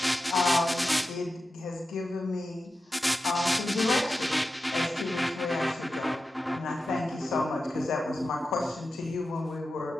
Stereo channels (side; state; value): both; normal; correlation 0.92